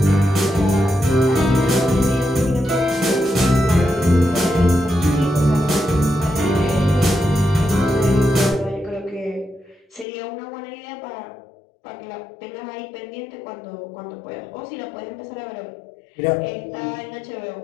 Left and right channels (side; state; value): right; drops out; at 10.1 s